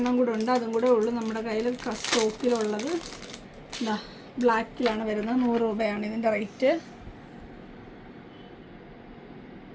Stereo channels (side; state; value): both; identical; correlation 1.00